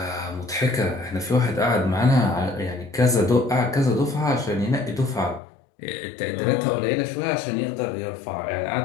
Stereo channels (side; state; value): right; drops out; at 5.4 s